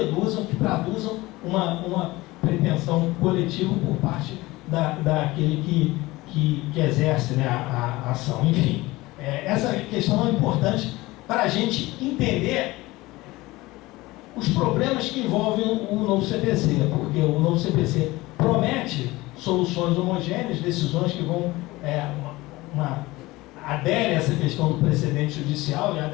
que traduzam uma pretensão coletiva por parte daquele que exerce, né, a ação. Enfim, essa questão é importante para a gente entender os problemas que envolvem o novo CPC, porque o novo CPC promete soluções homogêneas, decisões que vão adere a essa questão do precedente judicial, e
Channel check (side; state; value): right; quieter; 20.1 dB